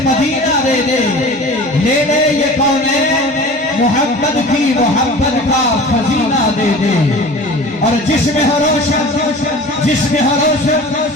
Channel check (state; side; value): normal; both; correlation 0.39